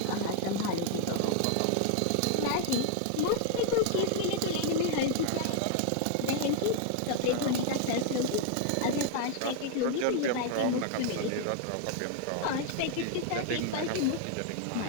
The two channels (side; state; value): both; different; correlation 0.00